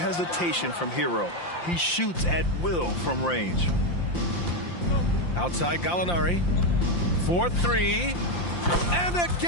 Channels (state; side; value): late; right; 5.8 ms